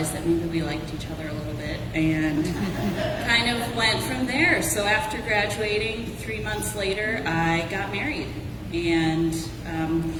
that maybe we liked each other a little bit and kind of went from there. So after graduating, 3 months later, I got married. And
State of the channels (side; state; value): both; identical; correlation 1.00